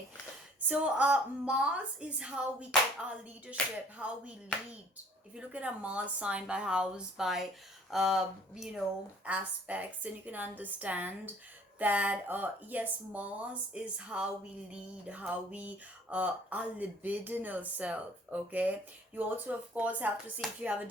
so Mars is how we get our leadership, how we lead. If you look at a Mars sign by house, by aspects, then you can understand that yes, Mars is how we lead, how we our libidinal self. Okay, you also of course have to see if you have a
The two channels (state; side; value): normal; both; correlation 0.55